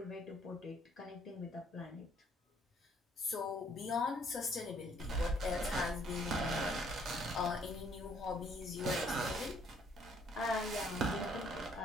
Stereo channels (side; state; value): both; normal; correlation 0.64